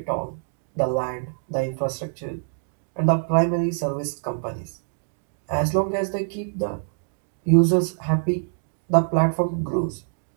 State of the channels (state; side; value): silent; left; digital silence